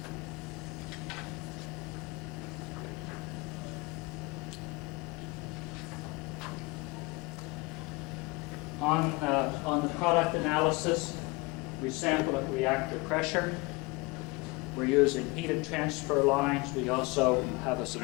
On the product analysis, we sample at reactor pressure. We're using heated transfer lines. We also have a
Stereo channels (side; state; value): right; quieter; 25.2 dB